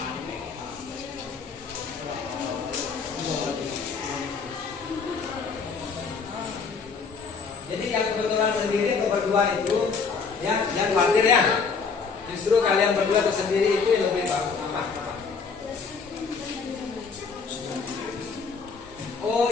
Jadi yang kebetulan sendiri atau berdua itu ya jangan khawatir ya. Justru kalian berdua atau sendiri itu yang lebih bagus. Apa?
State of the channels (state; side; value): quieter; right; 5.2 dB